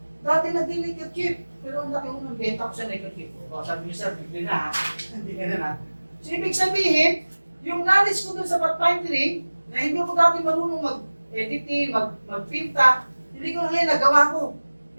dati nag-neckerchief, pero ang laki ko ng benta ko sa neckerchief. O sabi niyo sir, bigli na ha, hindi ka na. So ibig sabihin, yung knowledge ko doon sa pathfinding, na hindi ako dati marunong mag-editing, magpinta, hindi ko ngayon nagawa ko.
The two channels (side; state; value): both; inverted; correlation -1.00